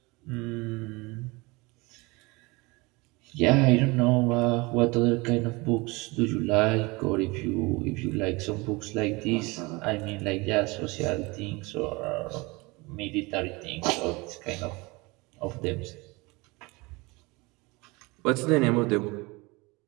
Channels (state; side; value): quieter; left; 24.8 dB